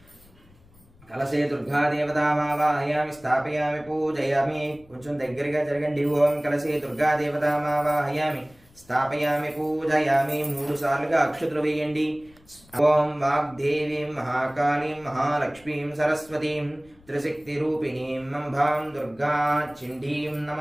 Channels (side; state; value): left; noise; rumble, 27 dB below the sound